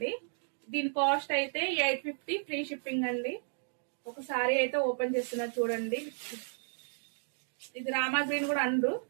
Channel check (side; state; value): left; silent; digital silence